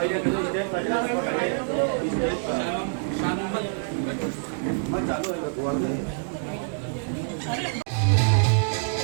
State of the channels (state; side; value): silent; left; digital silence